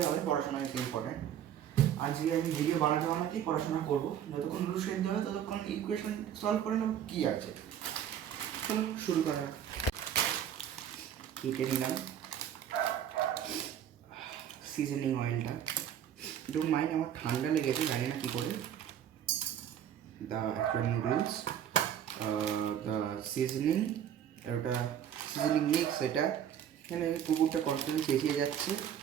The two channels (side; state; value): left; quieter; 9.7 dB